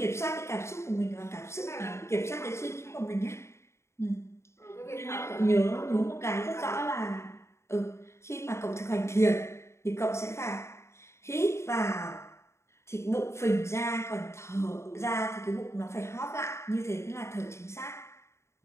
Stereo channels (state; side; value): late; right; 0.13 ms